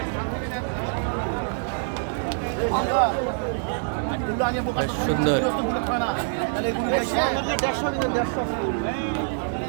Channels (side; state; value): left; silent; digital silence